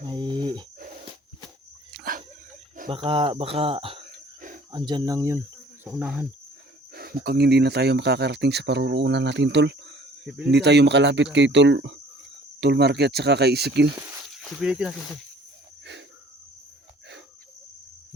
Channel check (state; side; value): normal; both; correlation 0.53